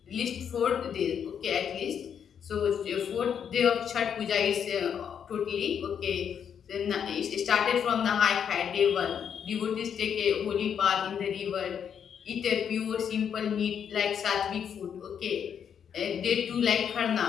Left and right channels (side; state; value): right; quieter; 8.0 dB